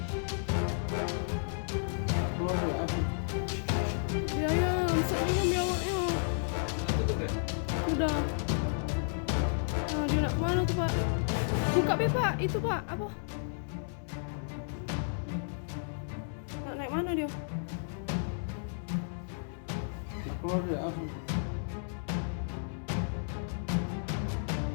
Keluar ya? Apa? Ya, ya, Amsat ni ambil awaknya. Sudah tutup ya? Sudah. Nah, dia nak kemana tu, Pak? Buka be, Pak. Itu, Pak. Apa? Nak naik mana dia? Keluar ya? Apa?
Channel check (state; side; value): silent; right; 56 dB below the other